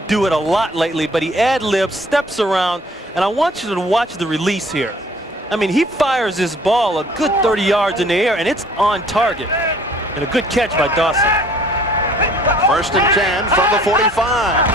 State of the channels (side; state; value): both; normal; correlation 0.55